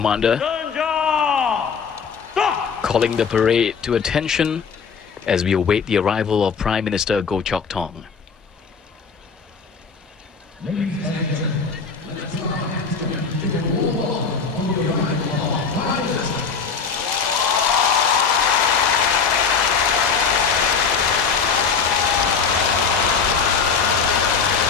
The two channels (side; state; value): right; quieter; 5.7 dB